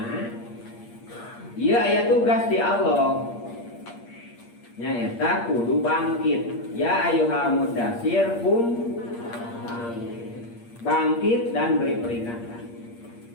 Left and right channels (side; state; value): right; late; 8.6 ms